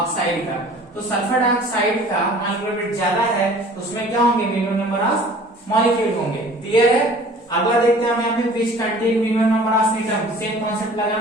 का। तो सल्फर डाइऑक्साइड का मॉलिक्यूलर वेट ज्यादा है, तो उसमें क्या होंगे मिनिमम नंबर ऑफ मॉलिक्यूल होंगे। क्लियर है, अगला देखते हैं हम यहाँ पे which contain minimum number of atom, same concept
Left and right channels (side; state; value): both; normal; correlation 0.48